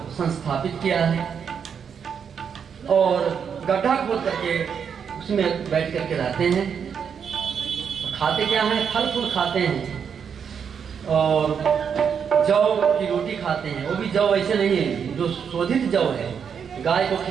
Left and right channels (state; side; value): quieter; left; 7.2 dB